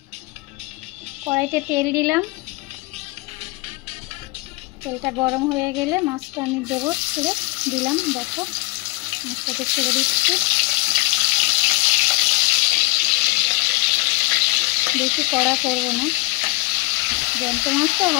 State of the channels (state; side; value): quieter; right; 24.6 dB